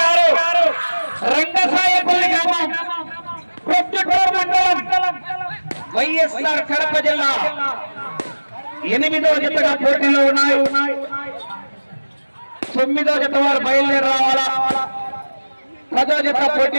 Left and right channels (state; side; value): inverted; both; correlation -1.00